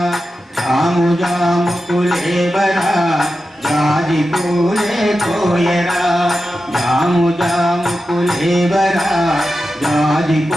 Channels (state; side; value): normal; both; correlation 0.91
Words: జాము జాము కులేవరా జాజి పూలే కోయరా. జాము జాము కులేవరా జాజి